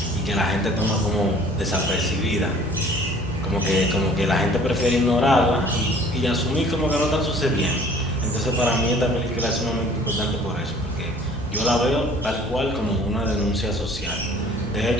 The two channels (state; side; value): normal; both; correlation 0.52